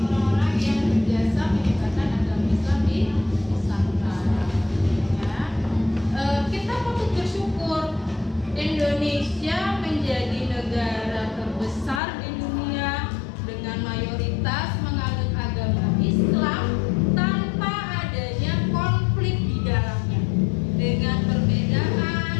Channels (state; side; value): drops out; right; at 12.0 s